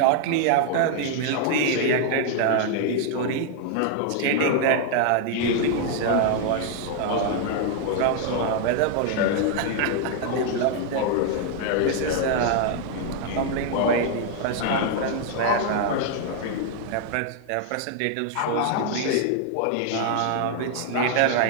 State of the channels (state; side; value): different; both; correlation 0.00